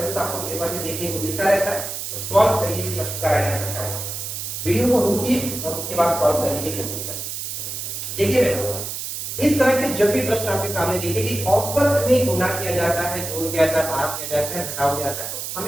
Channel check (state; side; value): noise; right; hiss, 6 dB below the sound